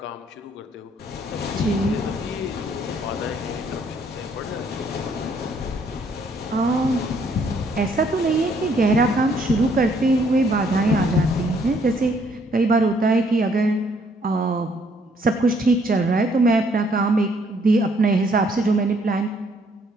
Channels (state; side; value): normal; both; correlation 0.66